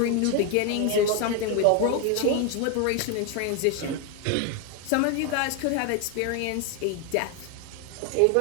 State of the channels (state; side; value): different; both; correlation 0.01